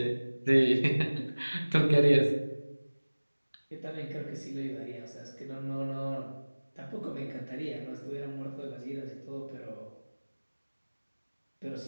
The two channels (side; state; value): both; inverted; correlation -1.00